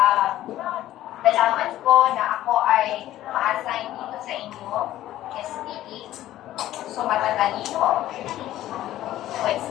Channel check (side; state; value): right; quieter; 14.0 dB